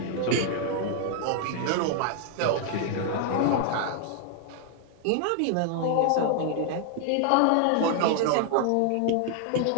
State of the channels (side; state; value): both; different; correlation 0.00